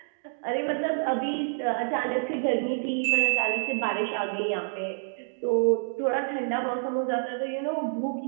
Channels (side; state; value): left; silent; digital silence